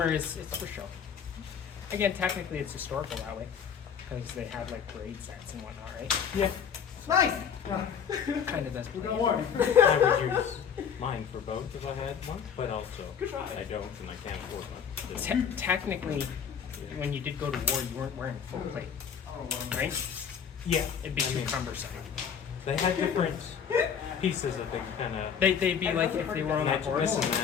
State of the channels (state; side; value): quieter; right; 7.4 dB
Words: is it's for show. Again, technically it's historical that way, because they had like parade sets and whatnot, right? Yeah. Nice. Kind of does. We got play. one. I would use mine for both if I had one, but also Good try. I don't and I can't afford one. Technically, when you did go to war, you weren't wearing full plate, right? Yeah. It'd be I too mean, cumbersome. They had different pieces that they kind of They'd be like if they were on a match horse. this and